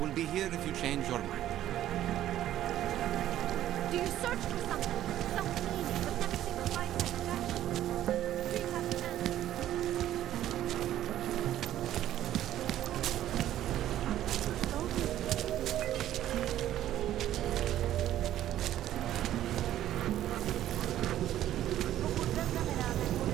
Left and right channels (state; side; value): quieter; left; 12.5 dB